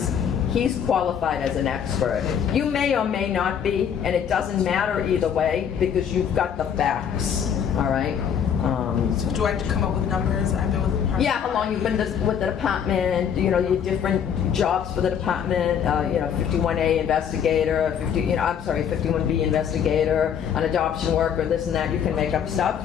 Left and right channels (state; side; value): quieter; right; 8.2 dB